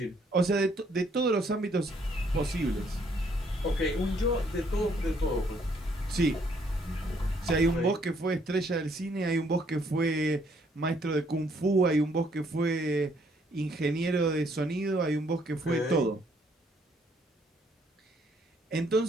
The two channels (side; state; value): both; normal; correlation 0.67